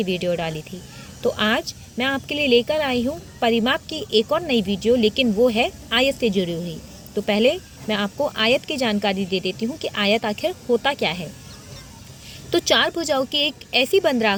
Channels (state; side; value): identical; both; correlation 1.00